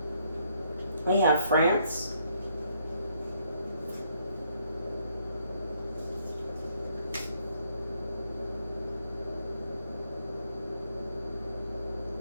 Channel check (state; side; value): inverted; both; correlation -0.71